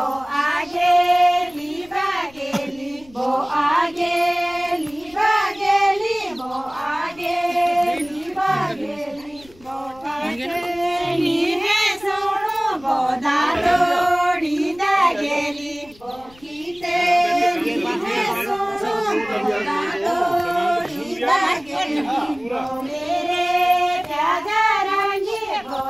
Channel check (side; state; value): left; noise; rumble, 26 dB below the sound